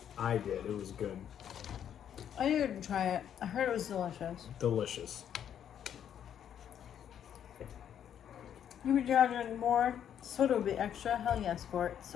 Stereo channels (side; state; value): right; quieter; 9.4 dB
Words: I did. It was good. I didn't try it. I heard it was delicious. Delicious. You would charging more? Soda would be extra? Hell yes, for it.